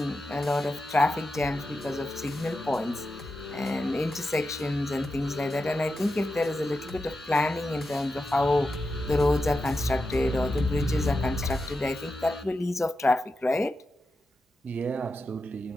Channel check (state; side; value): normal; both; correlation 0.89